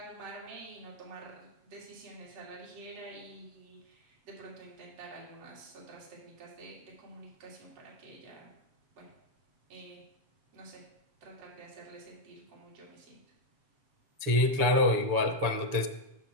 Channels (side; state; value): left; late; 7.0 ms